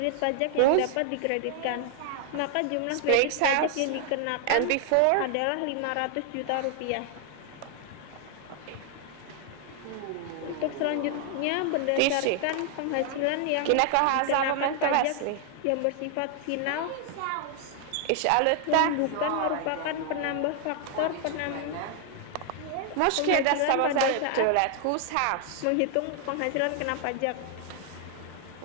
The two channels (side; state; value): both; different; correlation 0.00